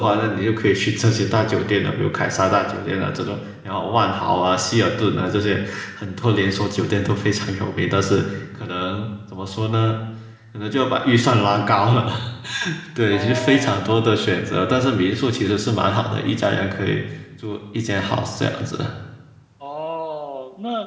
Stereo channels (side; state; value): both; identical; correlation 1.00